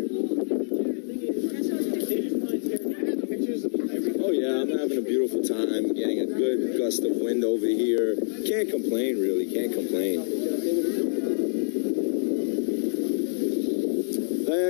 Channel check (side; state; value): right; silent; digital silence